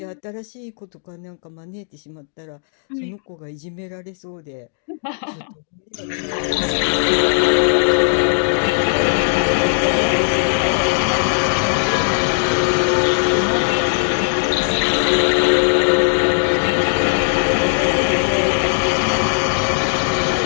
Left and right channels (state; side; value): silent; right; 67 dB below the other